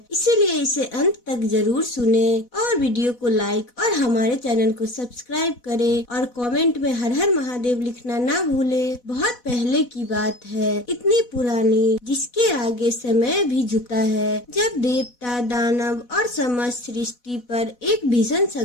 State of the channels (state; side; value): late; right; 4.1 ms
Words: इसीलिए इसे अंत तक जरूर सुने और वीडियो को लाइक और हमारे चैनल को सब्सक्राइब करें और कमेंट में हर हर महादेव लिखना ना भूले। बहुत पहले की बात है, इतनी पुरानी जिसके आगे समय भी झुकता है, जब देवता दानव और समस्त सृष्टि पर एक भीषण